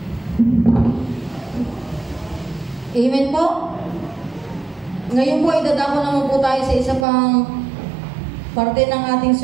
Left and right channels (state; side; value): drops out; left; at 7.1 s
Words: Amen po. Ngayon po, idadako naman po tayo sa isa pang parte ng ating